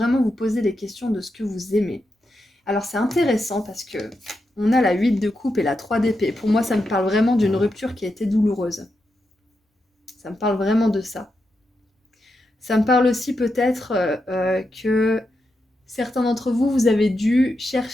vous poser des questions de ce que vous aimez. Alors c'est intéressant parce que on a la 8 de coupe et la 3 d'épée. Pour moi, ça me parle vraiment d'une rupture qui a été douloureuse. Ça me parle vraiment de ça. Ça me parle aussi peut-être que certains d'entre vous, vous avez dû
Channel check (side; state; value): both; normal; correlation 0.86